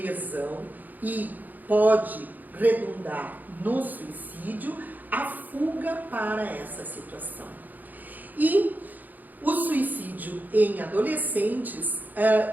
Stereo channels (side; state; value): left; late; 0.084 ms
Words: e pode redundar no suicídio, a fuga para essa situação. E o suicídio em adolescentes